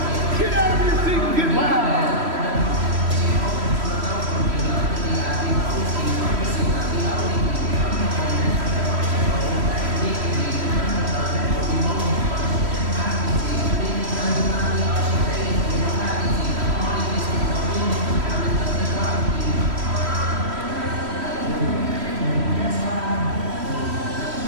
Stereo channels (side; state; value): left; late; 3.1 ms